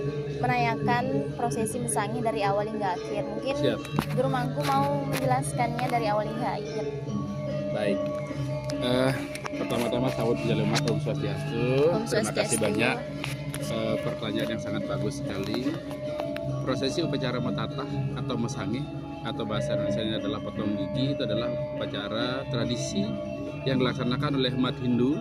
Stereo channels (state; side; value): identical; both; correlation 1.00